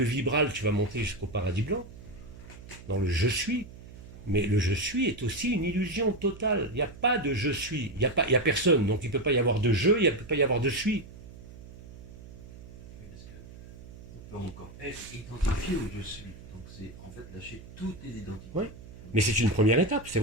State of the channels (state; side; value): noise; right; hum, 17 dB below the sound